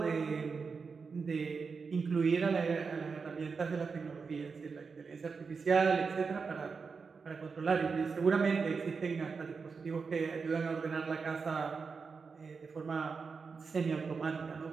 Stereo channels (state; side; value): quieter; left; 5.1 dB